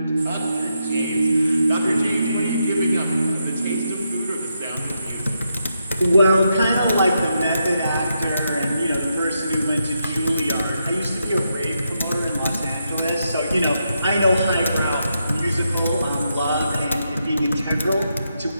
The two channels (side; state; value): both; inverted; correlation -0.83